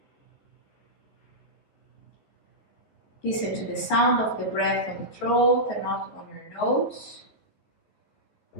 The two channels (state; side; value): late; right; 14 ms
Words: Listen to the sound of the breath on the throat and not on your nose.